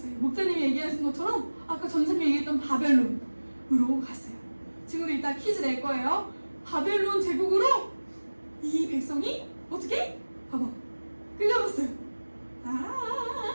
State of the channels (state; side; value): inverted; both; correlation -1.00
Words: 목사님이 얘기하신 것처럼 아까 전사님이 얘기했던 바벨론으로 갔어요. 지금도 이따 퀴즈 낼 거예요. 바벨론 제국으로 이 백성이 어떻게? 봐봐. 끌려갔어요.